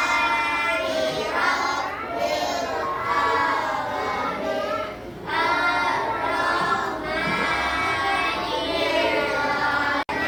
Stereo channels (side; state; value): both; identical; correlation 1.00